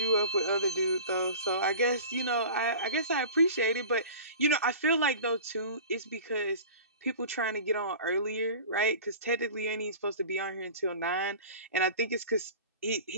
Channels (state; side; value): inverted; both; correlation -0.39